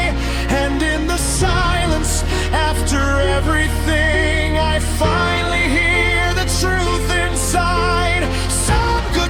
And in the silence, after everything, I finally hear the truth inside. Some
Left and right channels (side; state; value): both; identical; correlation 1.00